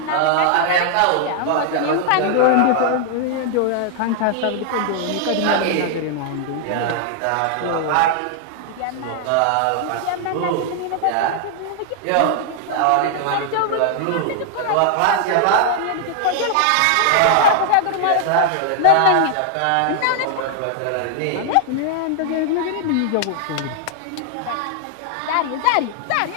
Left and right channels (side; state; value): both; different; correlation -0.01